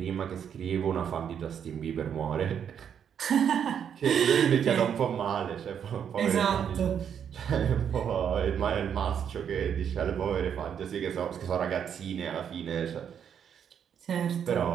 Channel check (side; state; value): left; quieter; 8.2 dB